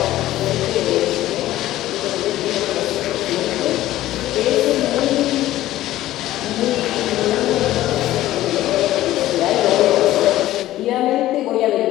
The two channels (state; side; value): quieter; right; 14.9 dB